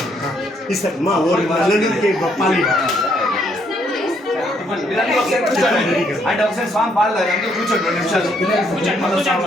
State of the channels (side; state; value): both; normal; correlation 0.71